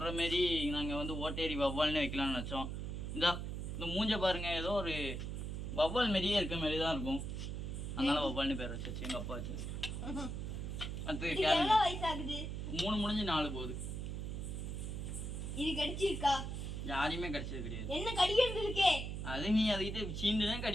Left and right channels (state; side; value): noise; right; hum, 4 dB below the sound